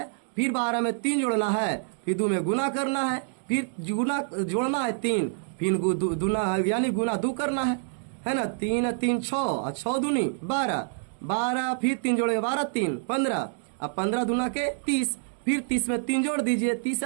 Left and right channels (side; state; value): left; silent; digital silence